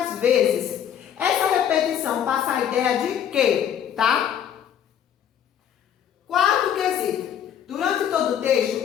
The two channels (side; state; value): right; quieter; 9.3 dB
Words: vezes? Essa repetição passa a ideia de quê, tá? Quarto quesito. Durante todo o